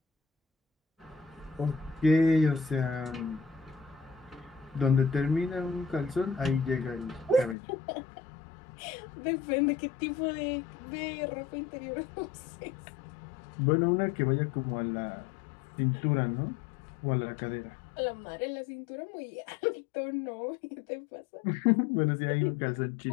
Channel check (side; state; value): right; drops out; at 7.6 s